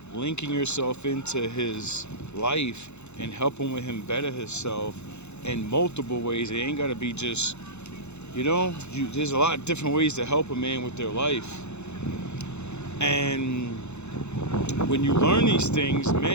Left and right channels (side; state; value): right; late; 0.82 ms